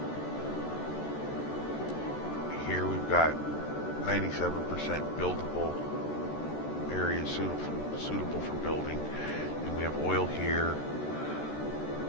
Here we've got 97% buildable areas suitable for building. And we have oil here.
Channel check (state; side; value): late; right; 13 ms